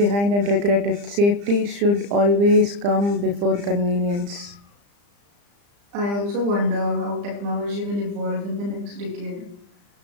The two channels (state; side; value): late; left; 35 ms